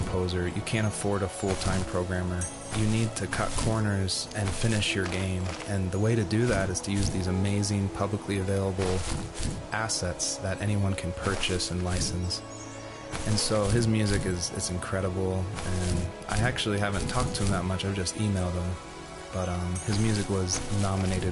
you can't afford a full-time programmer. You need to cut corners and finish your game, and the way to do that is to use these amazing publicly available assets that anyone can purchase and license. And so his music is incredible, and I actually haven't talked to him that much, I've just emailed him. But his music was nominated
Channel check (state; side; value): identical; both; correlation 1.00